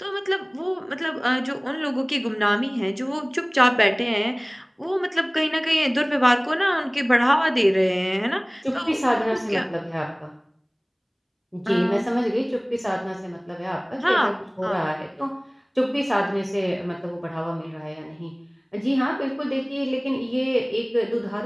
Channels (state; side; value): identical; both; correlation 1.00